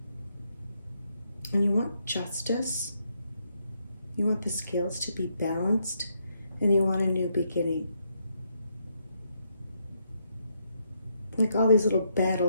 And you want justice. You want the scales to be balanced. And you want a new beginning. Like all these little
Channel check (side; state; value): both; inverted; correlation -0.77